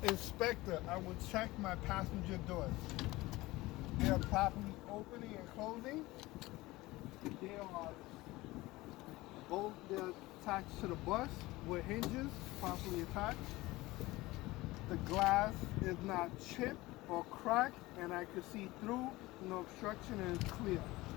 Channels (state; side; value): quieter; right; 19.7 dB